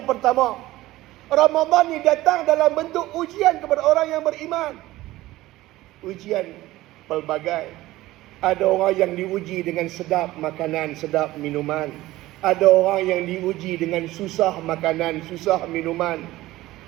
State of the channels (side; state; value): left; quieter; 17.0 dB